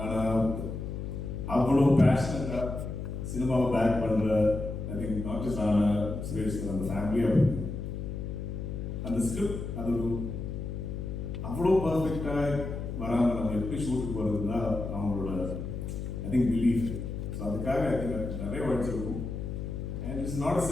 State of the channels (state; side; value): noise; left; hum, 5 dB below the sound